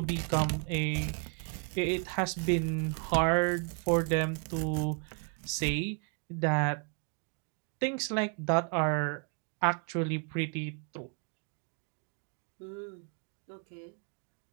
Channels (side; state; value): left; quieter; 37.1 dB